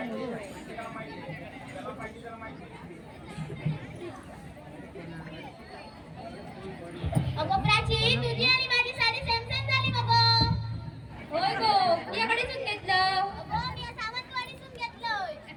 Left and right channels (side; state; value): both; identical; correlation 1.00